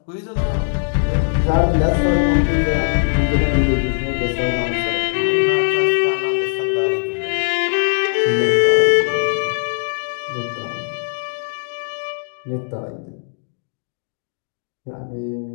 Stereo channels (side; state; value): right; silent; digital silence